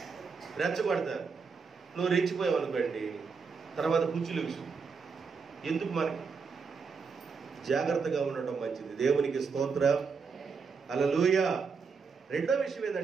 రెచ్చగొడతారు. నువ్వు రెచ్చిపోయావు అనుకోండి, తర్వాత కుర్చీలు విషయం ఎందుకు? మనకి జాగ్రత్తగా ఉండటం మంచిది. దేవునికి స్తోత్రం. హల్లెలూయా. రెండో విషయం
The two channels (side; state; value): left; quieter; 5.3 dB